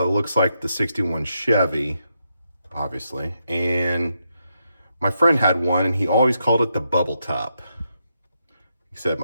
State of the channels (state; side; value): inverted; both; correlation -0.82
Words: looks like the 61 Chevy, obviously. And my friend had one and he always called it the bubble top. He said,